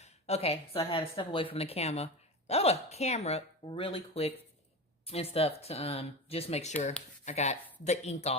okay, so I had to step away from the camera really quick and stuff to just make sure I got the ink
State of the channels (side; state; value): both; normal; correlation 0.25